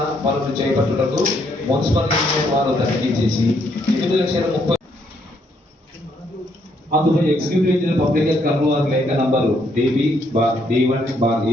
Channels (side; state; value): both; normal; correlation 0.72